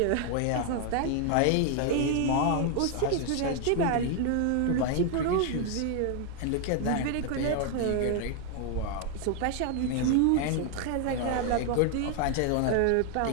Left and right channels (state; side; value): different; both; correlation 0.00